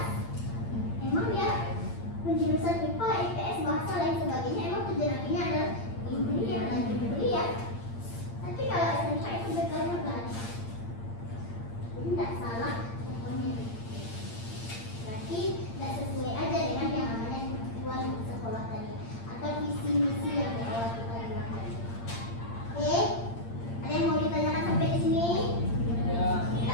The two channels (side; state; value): right; late; 8.7 ms